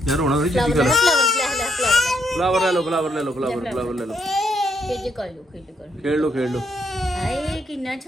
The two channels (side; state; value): both; normal; correlation 0.74